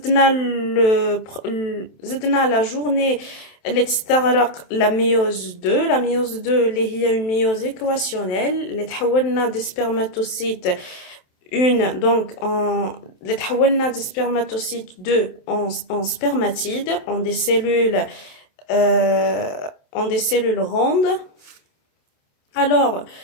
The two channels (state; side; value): late; right; 27 ms